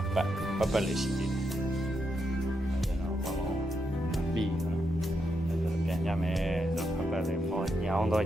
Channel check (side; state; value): both; normal; correlation 0.83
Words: ပတ်လေးရှိသေးတယ်အဲ့ဒါတော့ဘောင်းပြီးတော့ပြန်ကြမယ်ပတ်လေးပေါ်ညောင်းတော့